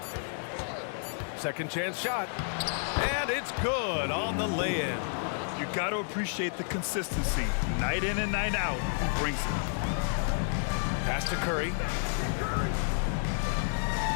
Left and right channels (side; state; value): right; silent; 57 dB below the other